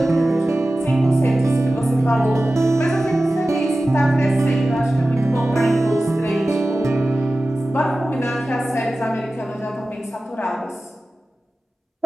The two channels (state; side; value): normal; both; correlation 0.95